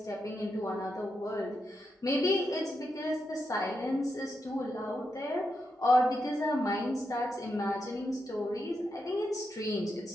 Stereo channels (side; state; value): both; normal; correlation 0.85